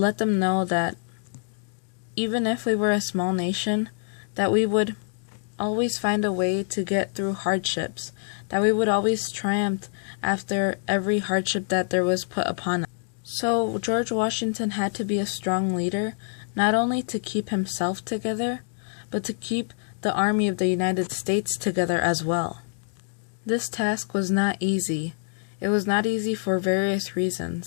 them know that even if we were a small nation, that we would always find a way to get through hardships, that we would always triumph after every hardship that there was put upon us. So George Washington had to be a strong leader, not only to keep himself together, but to keep the army of the United States together as well. This task was not easy. It was not easy for various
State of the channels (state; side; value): silent; right; 61 dB below the other